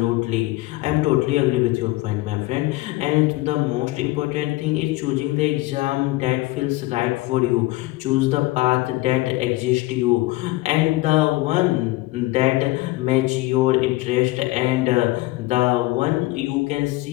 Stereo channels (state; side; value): quieter; right; 19.4 dB